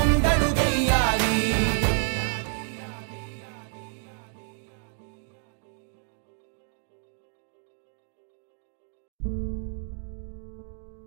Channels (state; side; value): silent; left; 59 dB below the other